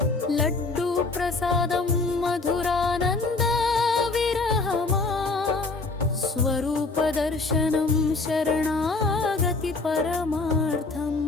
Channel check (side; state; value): right; quieter; 3.7 dB